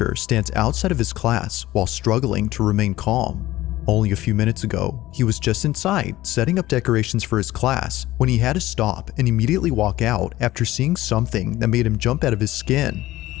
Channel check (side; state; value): right; quieter; 16.3 dB